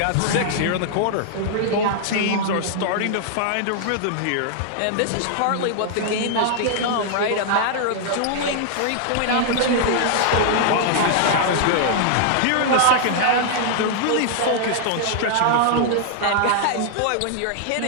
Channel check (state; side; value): different; both; correlation -0.01